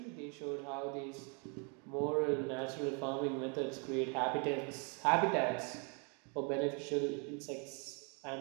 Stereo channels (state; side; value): quieter; left; 35.7 dB